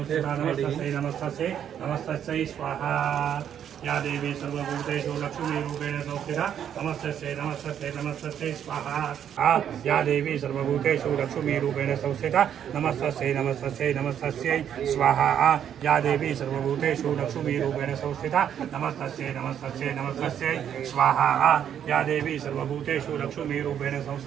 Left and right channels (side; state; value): left; quieter; 9.3 dB